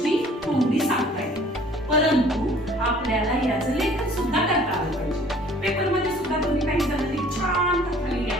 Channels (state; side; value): normal; both; correlation 0.54